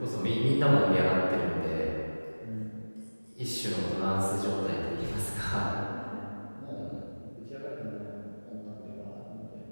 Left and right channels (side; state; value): both; inverted; correlation -1.00